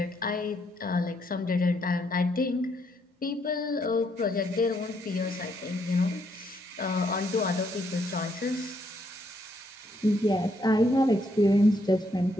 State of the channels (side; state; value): both; normal; correlation 0.73